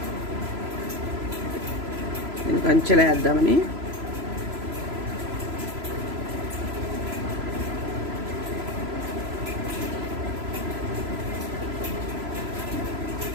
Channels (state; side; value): late; left; 3.0 ms